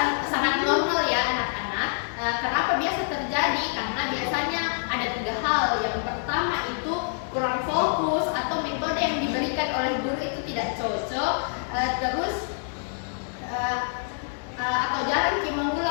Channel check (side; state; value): right; silent; 61 dB below the other